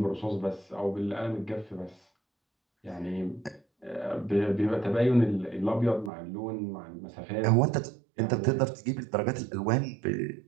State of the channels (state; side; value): drops out; left; at 6.1 s